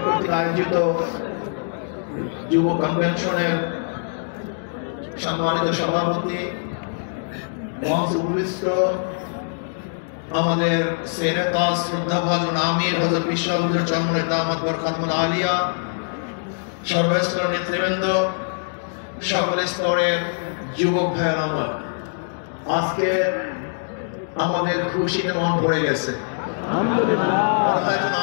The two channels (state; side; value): silent; right; digital silence